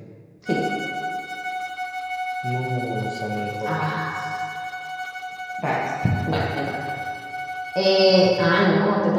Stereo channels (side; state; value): both; identical; correlation 1.00